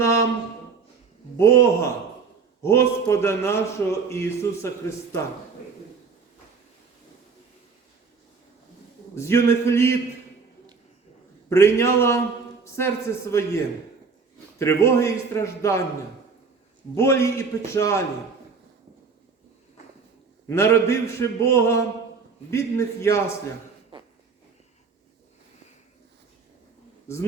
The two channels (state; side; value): quieter; left; 5.2 dB